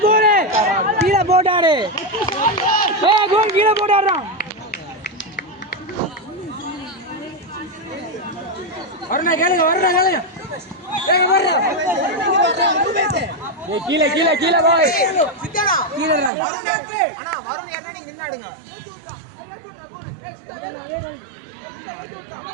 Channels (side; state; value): left; drops out; at 16.3 s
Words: போடு கீழே போட்டாரு. கோல் கீழே போட்டாடுறான். வரணும் கேளுங்க வரணும் கேளுங்க. கீழே கீழே கீழே போய் கீழே